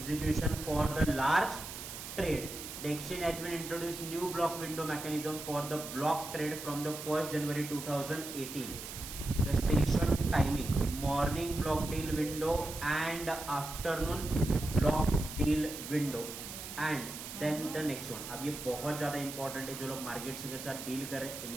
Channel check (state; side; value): noise; right; hiss, 9 dB below the sound